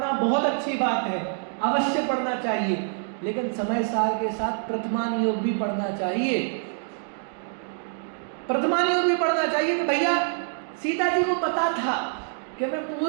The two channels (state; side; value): silent; left; digital silence